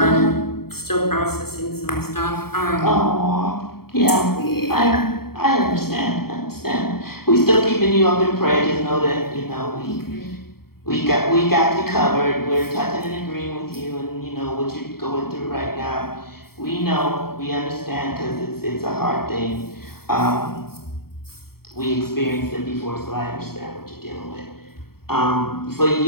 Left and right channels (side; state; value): right; late; 0.94 ms